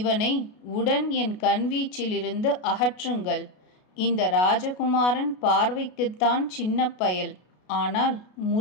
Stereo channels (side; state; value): right; late; 33 ms